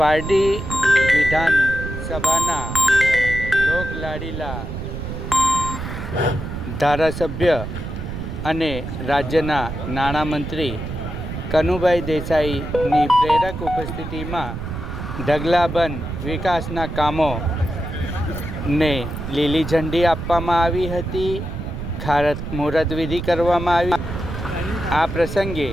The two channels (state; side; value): noise; right; rumble, 7 dB below the sound